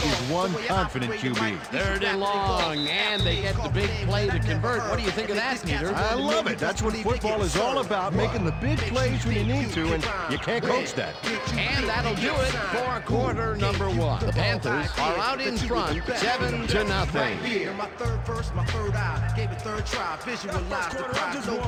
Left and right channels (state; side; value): identical; both; correlation 1.00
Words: is one confident QB. 3rd and long, and they get the big play to convert. What do you think of that, Peter? I love it. That's what football is all about, making the big plays when you need to, and you can't coach that. And that'll do it for quarter number 1. The Panthers are out in front, 7-0. My third verse, my third eye, gave it third try, visualize the prize, no